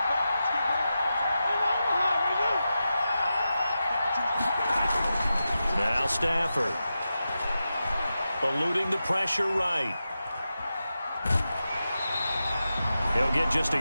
Now Stafford. Eluding the pressure right. He'll get just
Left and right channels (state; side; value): inverted; both; correlation -0.91